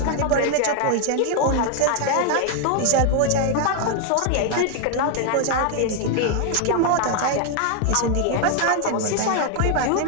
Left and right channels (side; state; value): both; different; correlation 0.00